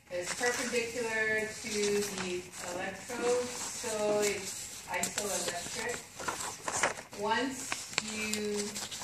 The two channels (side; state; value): both; identical; correlation 1.00